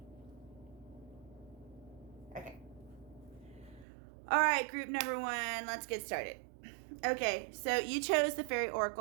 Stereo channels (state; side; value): drops out; left; at 3.9 s